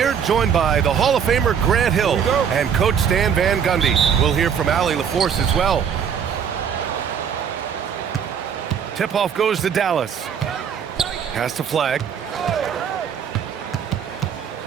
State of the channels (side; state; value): left; quieter; 7.7 dB